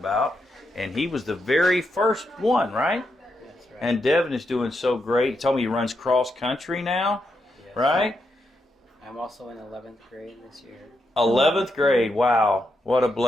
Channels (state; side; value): normal; both; correlation 0.83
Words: And he was the very first one, right? That's right. And Devin is doing so great. He told me he runs cross country now, Yes. right? I'm also in 11th grade this year. 11th grade, wow, what a